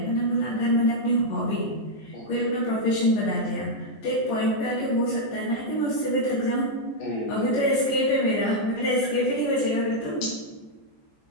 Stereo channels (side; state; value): right; late; 14 ms